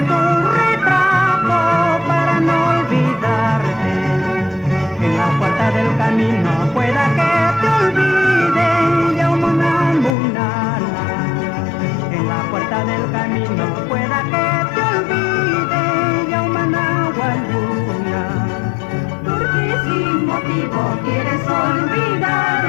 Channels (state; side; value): drops out; right; at 10.2 s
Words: tu retrato para no olvidarte. En la puerta del camino pueda que te olvide ya una munana. En la puerta del camino pueda que te olvide ya una nahualuna. Porque sin motivo quieres